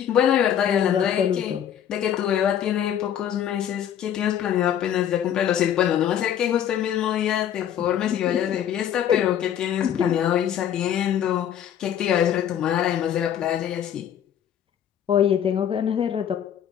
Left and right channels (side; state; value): right; quieter; 9.8 dB